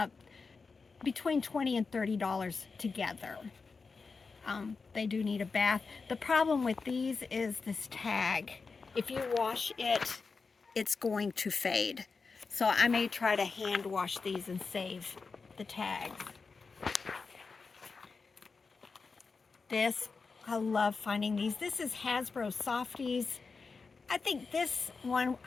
between $20 and $30 together. They do need a bath. The problem with these is this tag. If you wash it, it's going to fade. So I may try to hand wash these and save the tags. This, I love finding these. This is Hasbro Softies. I think this one,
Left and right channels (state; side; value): quieter; right; 4.6 dB